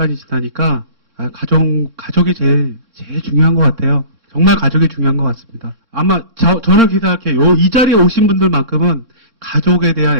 지나니까 가족이 제일 중요한 것 같아요. 정말 가족이 중요한 것 같습니다. 아마 저는 그렇게 생각해요. 이 자리에 오신 분들만큼은 가족에 대한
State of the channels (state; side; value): late; left; 3.6 ms